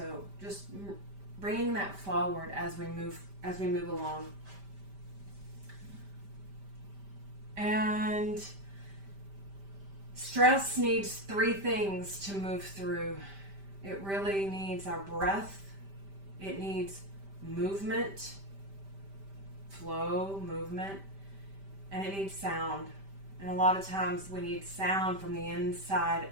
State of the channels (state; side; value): late; left; 5.1 ms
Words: just bringing that forward as we move along. And stress needs 3 things to move through. It really needs our breath. It needs movement, flow, movement, and it needs sound. And a lot of times we need sound from the inside